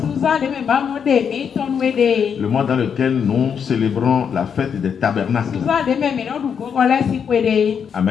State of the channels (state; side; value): quieter; right; 7.2 dB